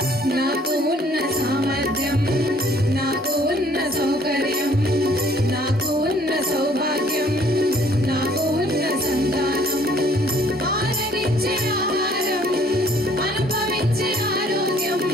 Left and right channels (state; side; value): normal; both; correlation 0.60